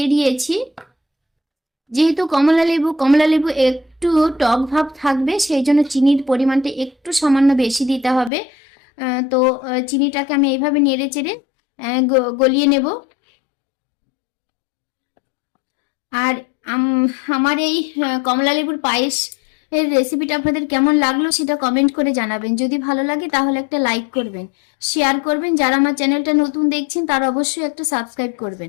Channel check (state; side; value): drops out; right; at 8.3 s